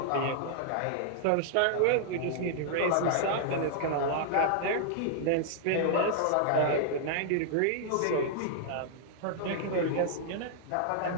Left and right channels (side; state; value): both; different; correlation -0.01